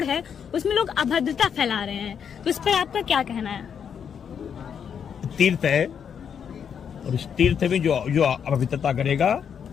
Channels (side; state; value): right; quieter; 7.6 dB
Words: है, उसमें लोग अभद्रता फैला रहे हैं। तो इस पर आपका क्या कहना है? तीर्थ है और इस तीर्थ में जो अपवित्रता करेगा